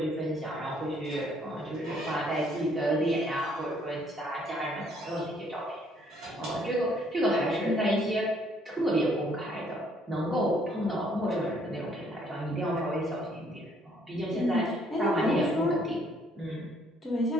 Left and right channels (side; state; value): both; normal; correlation 0.65